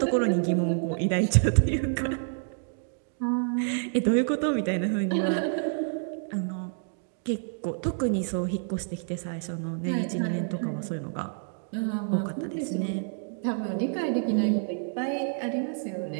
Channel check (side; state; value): left; silent; digital silence